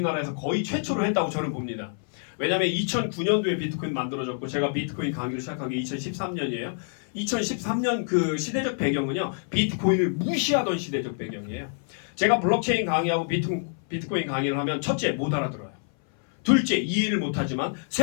거의 최초로 했다고 저는 봅니다. 왜냐하면 2009년도에 비트코인 만들어졌고 제가 비트코인 강의를 시작한 게 2013년이에요. 2013년 그 시대적 배경은요. 비트코인을 무시하던 시대적 배경이에요. 제가 블록체인 강의하고 비트코인 강의를 하면 첫째 못 알아들어요. 둘째 이해를 못하지만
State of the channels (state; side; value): silent; right; 58 dB below the other